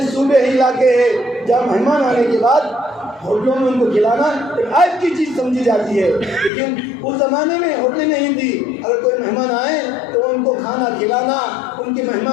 صوبے علاقے ہیں جہاں مہمان آنے کے بعد ہوٹلوں میں ان کو کھلانا ایک عیب کی چیز سمجھی جاتی ہے، لیکن اس زمانے میں ہوٹلیں نہیں تھی، اگر کوئی مہمان آئے تو ان کو کھانا کھلانا، ان کی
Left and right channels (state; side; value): drops out; right; at 6.5 s